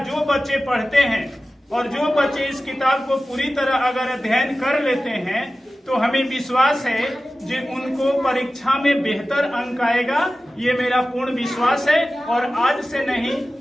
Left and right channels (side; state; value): both; normal; correlation 0.95